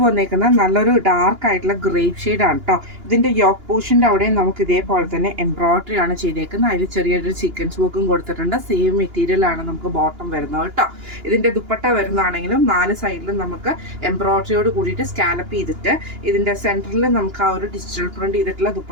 വന്നേക്കുന്നത് നല്ലൊരു ഡാർക്ക് ആയിട്ടുള്ള ഗ്രേപ്പ് ഷെയ്ഡാണ് കേട്ടോ. ഇതിൻ്റെ യോക്ക് പോർഷൻ്റെ അവിടെയും നമുക്ക് ഇതേപോലെ തന്നെ എംബ്രോയിഡറി ആണ് ചെയ്തേക്കുന്നത്. അതിൽ ചെറിയൊരു സീക്വൻസ് വർക്കും കൊടുത്തിട്ടുണ്ട്. സെയിം മെറ്റീരിയലാണ് നമുക്ക് ബോട്ടം വരുന്നത് കേട്ടോ. ഇതിൻ്റെ ദുപ്പട്ട വരുന്നതാണെങ്കിലും 4 സൈഡിലും നമുക്ക് എംബ്രോയിഡറിയോട് കൂടിയിട്ട് സ്കാലപ്പ് ചെയ്തിട്ട് ഇതിൻ്റെ സെൻറ്ററിൽ നമുക്ക് ആ ഒരു ഡിജിറ്റൽ പ്രിന്റ് ചെയ്തിട്ടുള്ള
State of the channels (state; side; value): late; left; 2.9 ms